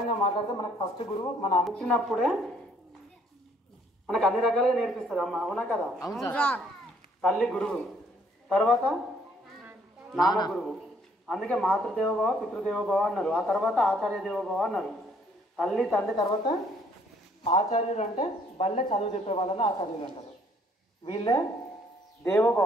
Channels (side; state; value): both; normal; correlation 0.64